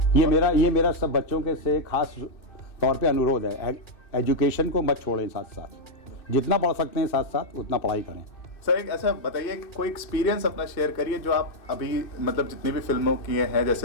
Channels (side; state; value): right; late; 2.6 ms